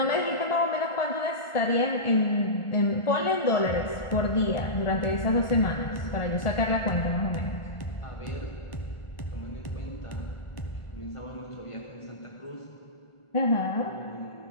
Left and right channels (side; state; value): right; late; 1.4 ms